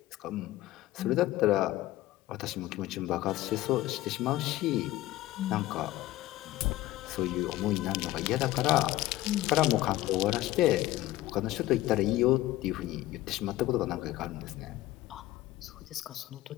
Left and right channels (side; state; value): right; quieter; 16.3 dB